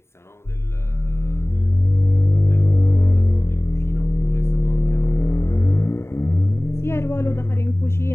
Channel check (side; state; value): right; late; 0.13 ms